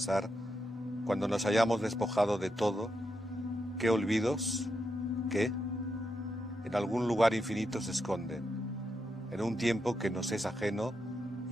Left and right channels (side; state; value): both; normal; correlation 0.84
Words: Cuando nos hayamos despojado de todo. ¿Qué olvidos? ¿Qué? En algún lugar infinito se esconden, en un tiempo que nos es ajeno